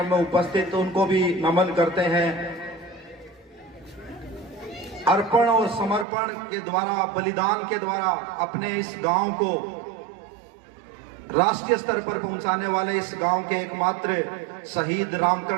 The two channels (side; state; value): left; drops out; at 6.1 s